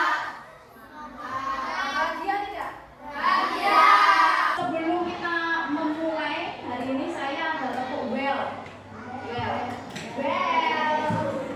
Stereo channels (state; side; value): identical; both; correlation 1.00